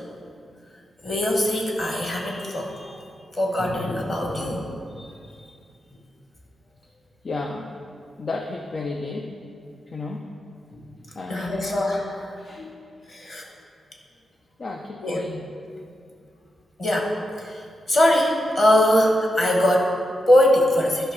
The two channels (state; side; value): normal; both; correlation 0.86